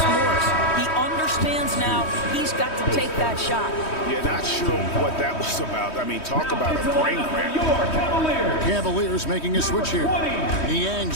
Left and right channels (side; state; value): right; late; 3.1 ms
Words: Morris. He understands now he's got to take that shot. Yeah, not sure what that was about. I mean, talk about a brain cramp. Cavaliers making a switch here.